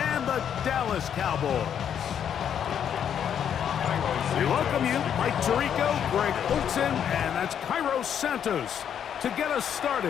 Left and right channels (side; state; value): right; quieter; 8.7 dB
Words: the Dallas Cowboys. We welcome you, Mike Tirico, Greg Olson, and that's Kairos Santos to get us